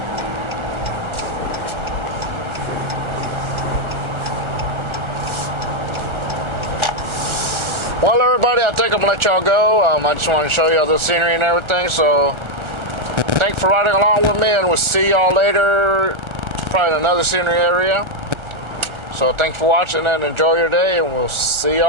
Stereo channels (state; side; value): late; left; 1.3 ms